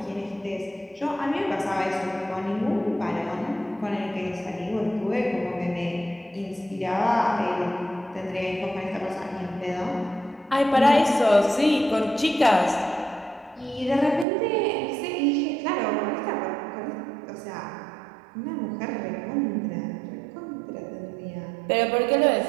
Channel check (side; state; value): left; drops out; at 14.2 s